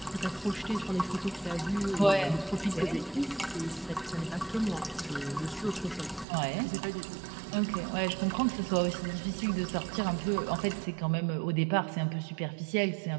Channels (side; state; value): left; drops out; at 6.2 s